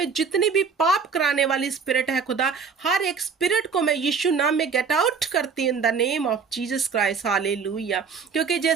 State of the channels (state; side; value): quieter; left; 5.7 dB